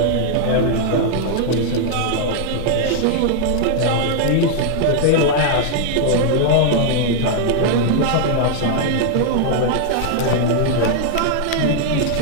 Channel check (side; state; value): both; different; correlation -0.01